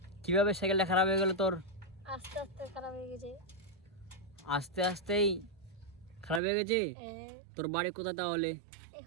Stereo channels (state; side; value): drops out; left; at 6.4 s